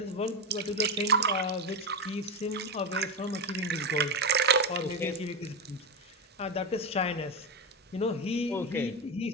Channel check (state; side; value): normal; both; correlation 0.11